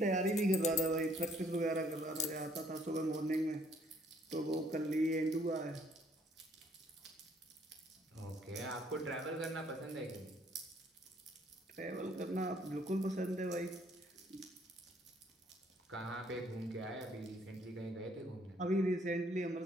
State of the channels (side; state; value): both; normal; correlation 0.64